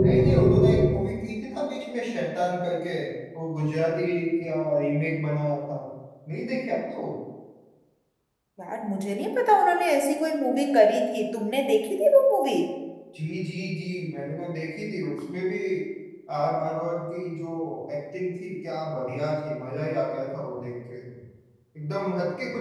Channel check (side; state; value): both; identical; correlation 1.00